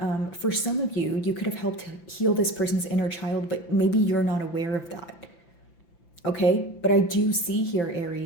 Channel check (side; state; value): right; late; 5.9 ms